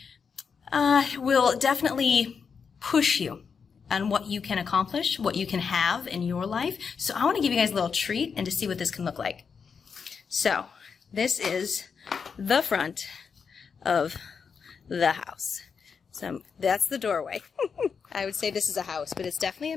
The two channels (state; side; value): quieter; right; 6.0 dB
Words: will definitely push you on what you can accomplish, what you can have in your life. So I want to give you guys a little treat and to see what this can look like. So this is the front of the house. So that's the doorway. I would say this is a house, but it's definitely a